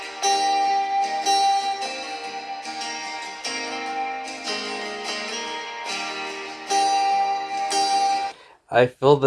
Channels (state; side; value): identical; both; correlation 1.00